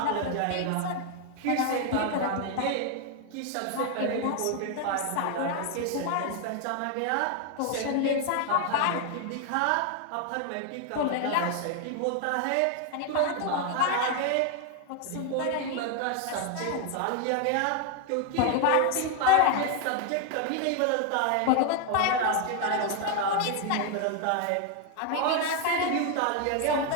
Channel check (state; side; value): different; both; correlation 0.01